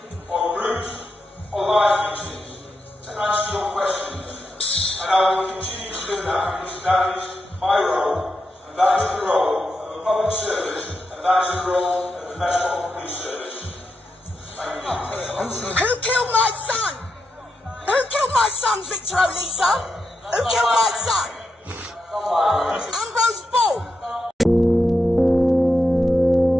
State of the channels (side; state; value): both; normal; correlation 0.85